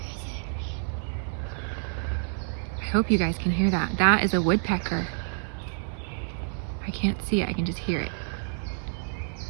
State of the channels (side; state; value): left; silent; 56 dB below the other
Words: I hope you guys can hear that. That is a woodpecker. I can't see it, I can just hear it.